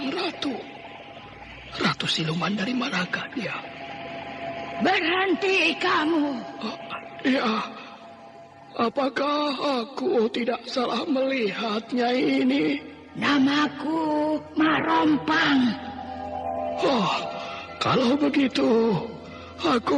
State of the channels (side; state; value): both; identical; correlation 1.00